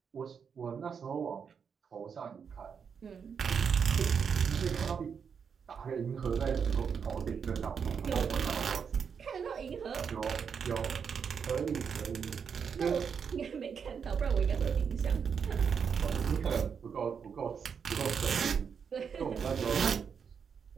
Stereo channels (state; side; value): quieter; left; 6.7 dB